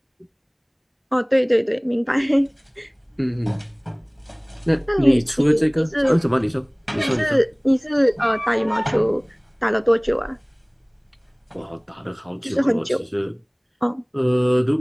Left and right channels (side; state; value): both; identical; correlation 1.00